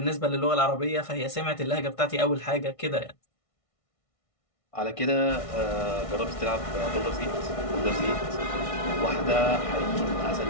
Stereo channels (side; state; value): right; late; 1.6 ms